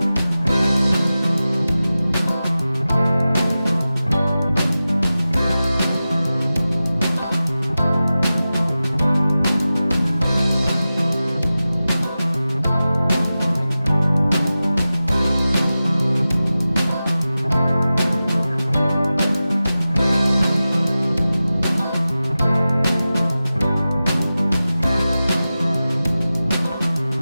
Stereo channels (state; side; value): inverted; both; correlation -0.95